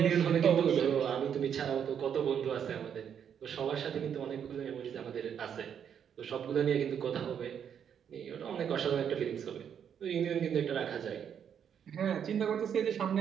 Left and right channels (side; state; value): left; quieter; 8.3 dB